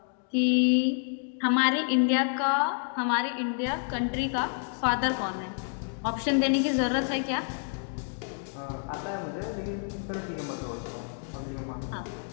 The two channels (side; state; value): right; silent; 59 dB below the other